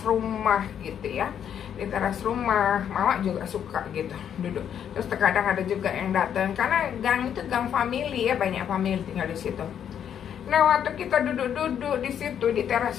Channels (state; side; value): quieter; right; 8.9 dB